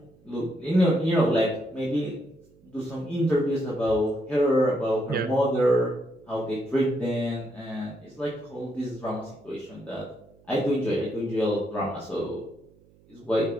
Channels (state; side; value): noise; right; hum, 29 dB below the sound